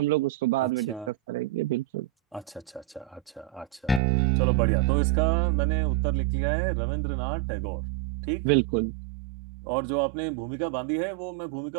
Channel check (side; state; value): left; drops out; at 4.0 s